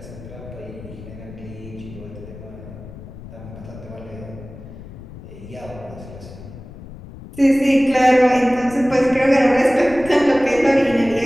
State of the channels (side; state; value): left; noise; rumble, 15 dB below the sound